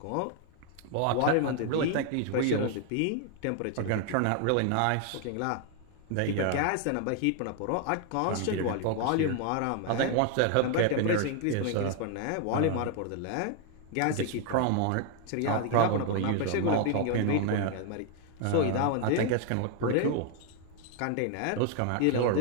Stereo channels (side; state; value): both; different; correlation 0.00